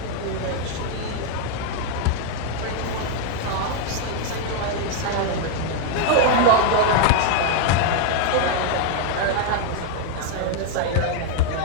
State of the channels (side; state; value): both; different; correlation 0.00